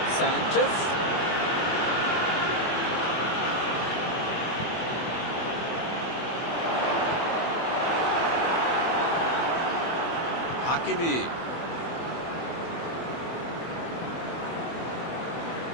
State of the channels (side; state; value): right; late; 24 ms